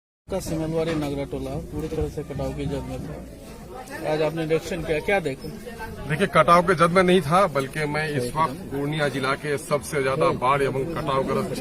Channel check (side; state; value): both; identical; correlation 1.00